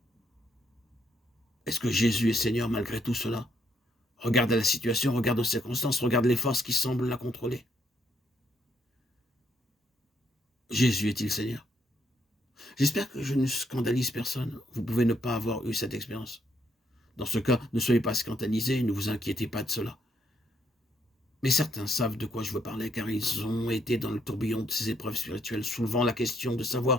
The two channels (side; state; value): both; normal; correlation 0.73